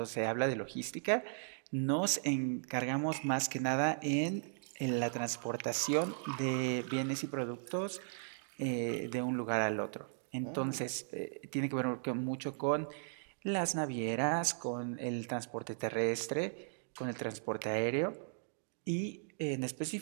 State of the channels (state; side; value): silent; left; digital silence